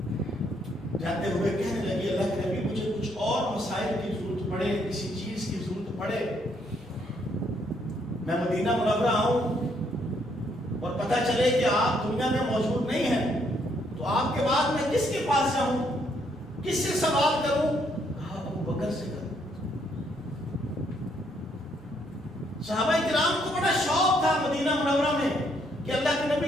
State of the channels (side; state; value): left; noise; rumble, 28 dB below the sound